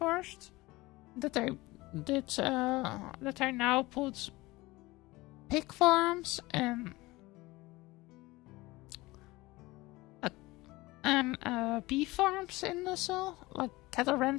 that I now put pig farms and bee farms in also, like cattle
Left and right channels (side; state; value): right; quieter; 20.7 dB